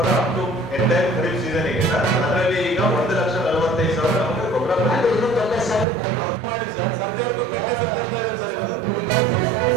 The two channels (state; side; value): drops out; left; at 5.9 s